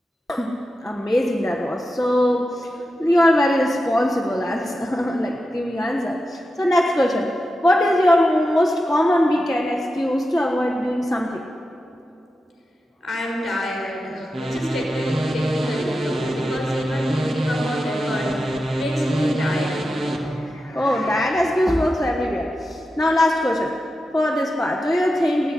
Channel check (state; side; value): normal; both; correlation 0.90